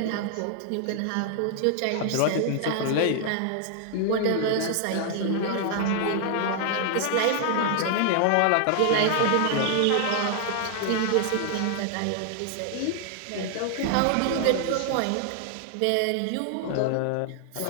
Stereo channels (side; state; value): both; different; correlation 0.00